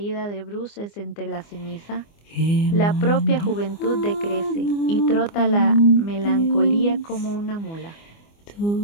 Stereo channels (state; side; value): late; right; 24 ms